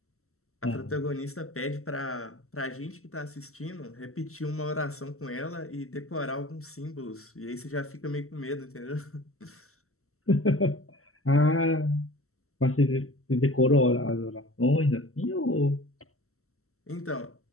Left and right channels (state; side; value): late; right; 0.63 ms